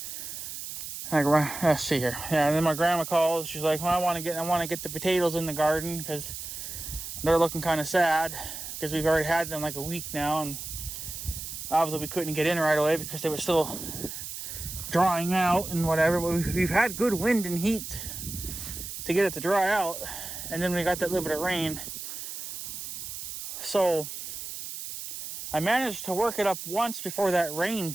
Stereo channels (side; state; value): right; noise; hiss, 8 dB below the sound